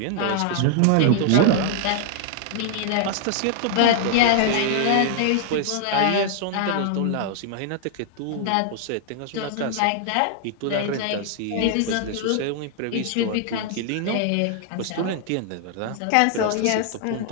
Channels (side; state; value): both; different; correlation 0.00